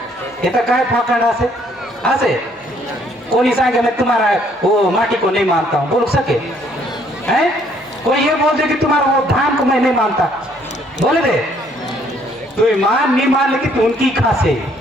ये तो काय फाकड़ आसे कोई सांगे मैं तुम्हारा वो माटी को नहीं मानता हूँ बोल सके हैं कोई ये बोल दे कि तुम्हारा वो धान को मैं नहीं मानता बोले दे तू मान नहीं मान लेकिन तू उनकी खासे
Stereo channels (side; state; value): both; normal; correlation 0.65